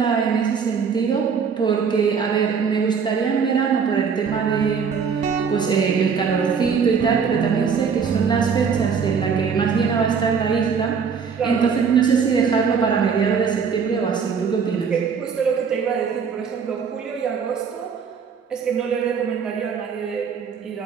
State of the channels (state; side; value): quieter; left; 6.2 dB